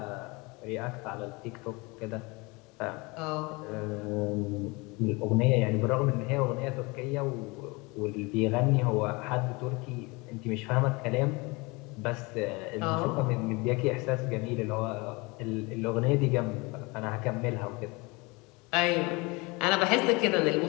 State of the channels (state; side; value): quieter; right; 26.1 dB